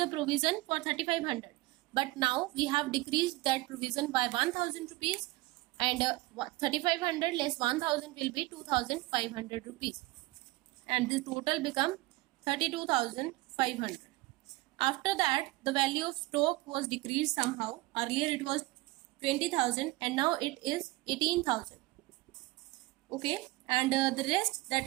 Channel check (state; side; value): quieter; left; 20.7 dB